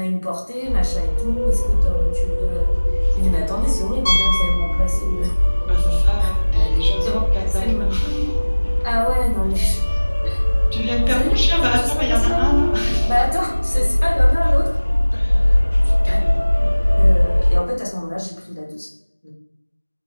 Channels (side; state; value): both; inverted; correlation -1.00